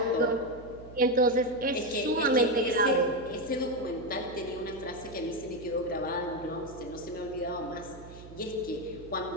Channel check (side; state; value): right; noise; hum, 17 dB below the sound